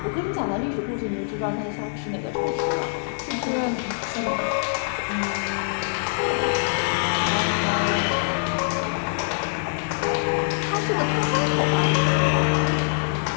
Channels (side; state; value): right; silent; digital silence